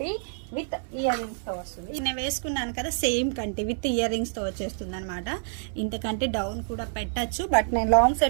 విత్ ఇయర్ రింగ్స్తో వస్తుంది. నేను వేసుకున్నాను కదా, సేమ్ కంటి విత్ ఇయర్ రింగ్స్తో వచ్చేస్తుంది అనమాట. ఇంతకంటే డౌన్ కూడా పెట్టచ్చు, బట్ నేను లాంగ్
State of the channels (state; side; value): silent; left; digital silence